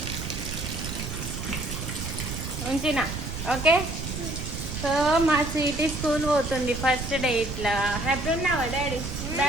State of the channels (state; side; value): noise; right; rumble, 6 dB below the sound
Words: ఉంచినా ఓకే. సో మా స్వీటీ స్కూల్ పోతుంది ఫస్ట్ డే. ఇట్లా హ్యాపీ ఉన్నావా డాడీ?